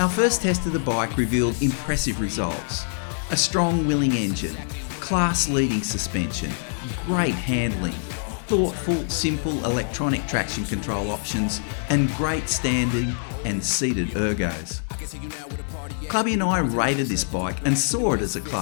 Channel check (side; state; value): right; silent; digital silence